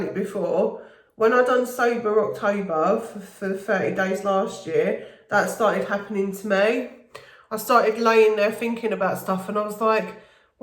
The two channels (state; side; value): identical; both; correlation 1.00